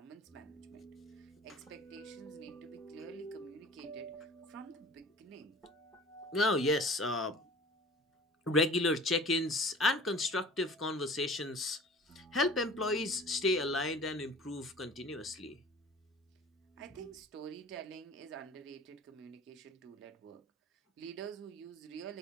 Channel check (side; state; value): both; normal; correlation 0.44